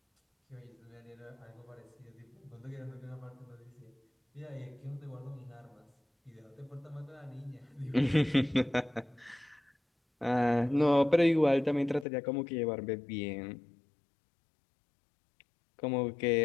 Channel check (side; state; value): right; drops out; at 12.1 s